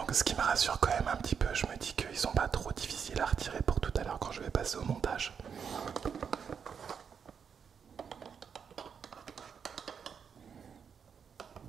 ce qui me rassure quand même un petit peu, je me dis qu'ils sont pas trop difficiles à retirer pour tout à l'heure quand je vais passer au montage.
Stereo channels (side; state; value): left; quieter; 6.9 dB